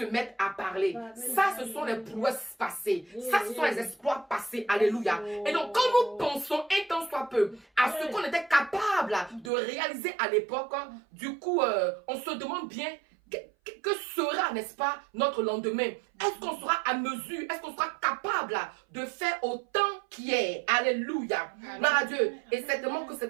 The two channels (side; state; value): left; drops out; at 9.5 s